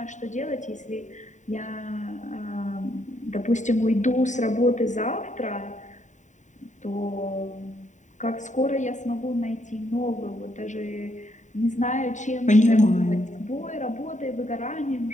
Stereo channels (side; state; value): right; late; 0.35 ms